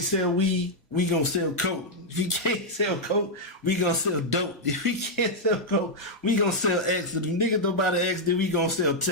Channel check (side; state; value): both; normal; correlation -0.03